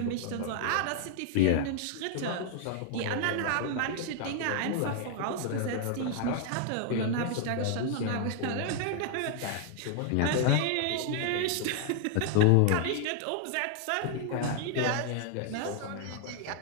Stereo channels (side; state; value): both; different; correlation 0.00